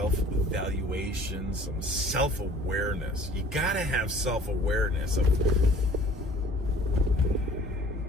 some self-awareness. You gotta have self-awareness of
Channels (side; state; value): both; normal; correlation 0.51